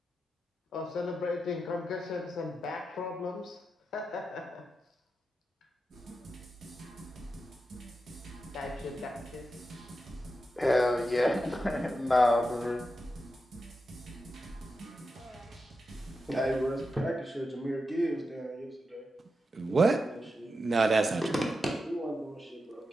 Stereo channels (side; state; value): both; normal; correlation 0.89